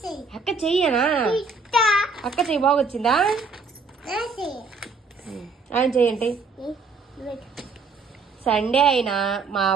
అక్క చెయ్యనా? అక్క చెయ్యి బాగొచ్చిందా? ఆయన చెయ్యండి. సండే అయినా మా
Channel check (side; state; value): left; quieter; 4.3 dB